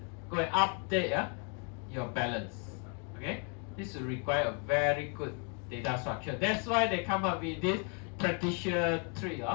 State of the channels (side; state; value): right; quieter; 38.3 dB